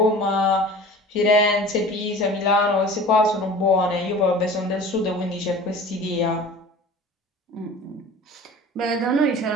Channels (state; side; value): normal; both; correlation 0.41